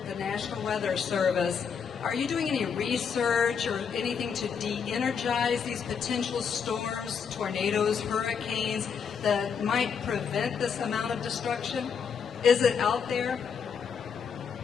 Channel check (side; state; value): right; quieter; 6.6 dB